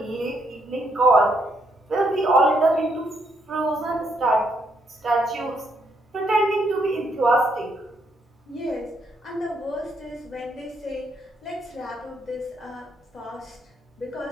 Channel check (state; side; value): normal; both; correlation 0.74